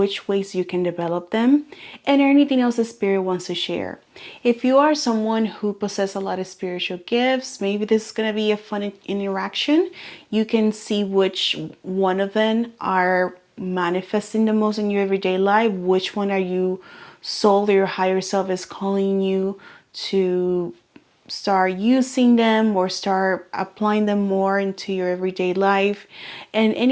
ways you can develop them, and anything else the spirit wants to share. If you are someone who possesses a lot of spiritual gifts, maybe this is going to be a fun interaction. You can see which one of them are manifesting the most in your everyday life, which one are you soul or your higher self is calling you to start using them or start applying them more into your everyday life, and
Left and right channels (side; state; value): both; identical; correlation 1.00